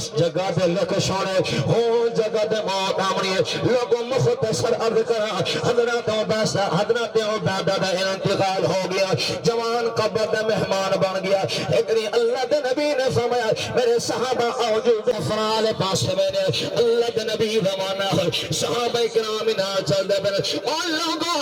جگہ دے لکھ چھوڑے وہ جگہ دے موت آمنی ہے. لوگوں مختصر عرض کرا حضرت عبادہ دا انتقال ہو گیا، جوان قبر دے مہمان بن گیا. ایک دن اللہ دے نبی نے فرمایا میرے صحابہ آؤ جو افرال پاس میں نے اللہ دے نبی زمانہ ہے صحابہ کرام نہ چل دے بن اور لوگوں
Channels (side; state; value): both; identical; correlation 1.00